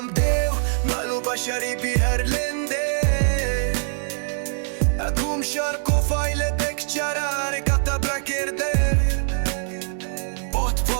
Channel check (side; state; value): left; silent; 63 dB below the other